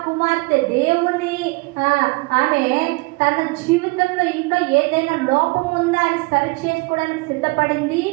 కుమార్తె దేవుని ఆమె తన జీవితంలో ఇంకా ఏదైనా లోపం ఉందా అని సరి చేసుకోవడానికి సిద్ధపడింది.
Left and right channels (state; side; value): quieter; left; 26.5 dB